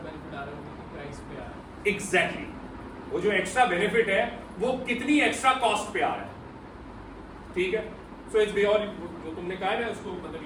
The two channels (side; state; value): both; identical; correlation 1.00